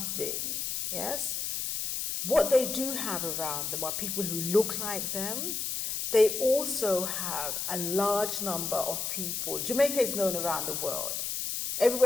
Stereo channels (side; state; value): left; noise; hiss, 2 dB below the sound